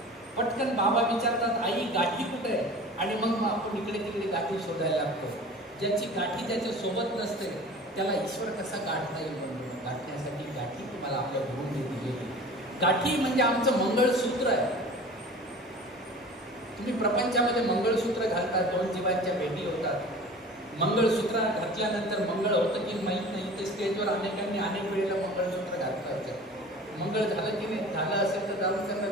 पटकन बाबा विचारतात, आई गाठी कुठे आहे? आणि मग आपण इकडे तिकडे गाठी शोधायला लागतो. ज्याची गाठी ज्याच्या सोबत नसते त्याला ईश्वर कसा गाठता येईल? म्हणून गाठण्यासाठी गाठी तुम्हाला आपल्या गुरुने दिलेली. गाठी म्हणजे आमचं मंगळसूत्र आहे. तुम्ही प्रपंचामध्ये मंगळसूत्र घालता, 2 जीवांच्या भेटी होतात. मंगळसूत्र घातल्यानंतर मंगळ होतं की माहीत नाही, ते स्टेजवर अनेकांनी अनेक वेळेला मंगळसूत्र घातलं. मंगळ झालं की नाही, झालं असेल तर जाऊन त्यांना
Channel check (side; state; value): both; normal; correlation 0.41